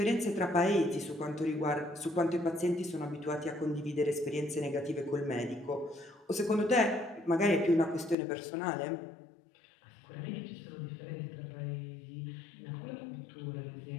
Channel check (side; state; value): right; drops out; at 8.2 s